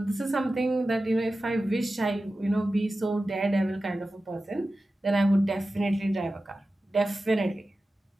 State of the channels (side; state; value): both; normal; correlation 0.94